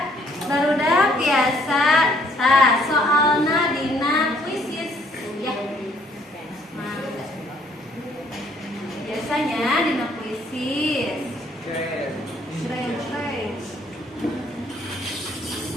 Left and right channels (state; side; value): normal; both; correlation 0.64